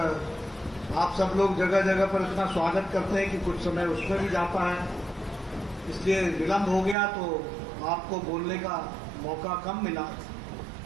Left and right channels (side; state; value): left; drops out; at 7.0 s